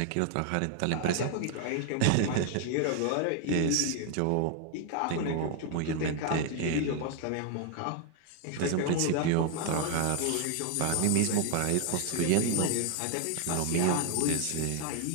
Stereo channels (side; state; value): both; different; correlation 0.00